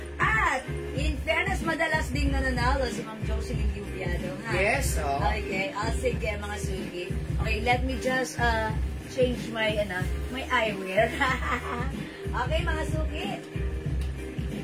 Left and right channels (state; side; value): identical; both; correlation 1.00